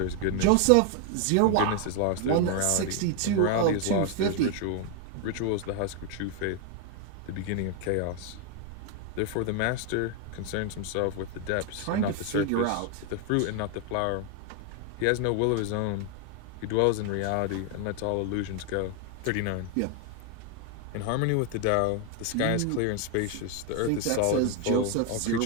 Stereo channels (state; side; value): different; both; correlation 0.01